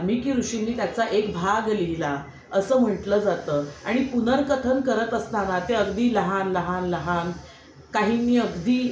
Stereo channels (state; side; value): identical; both; correlation 1.00